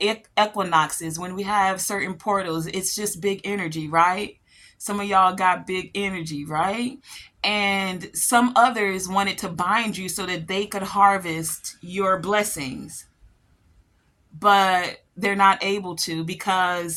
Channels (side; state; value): both; identical; correlation 1.00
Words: equinoxes, when we have certain portals, it's just big energy, right? Some of y'all got big energy, right? And some others wanted to bind you so that they could harvest your blessings, but they're not able to